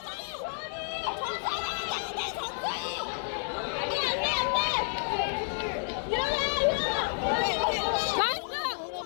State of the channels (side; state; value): right; silent; 58 dB below the other